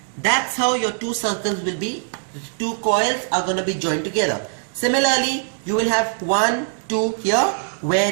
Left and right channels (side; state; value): left; silent; digital silence